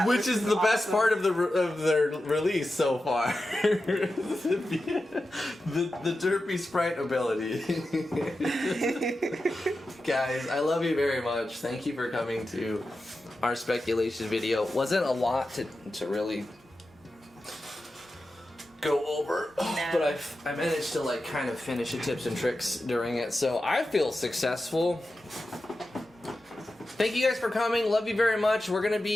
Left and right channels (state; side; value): normal; both; correlation 0.92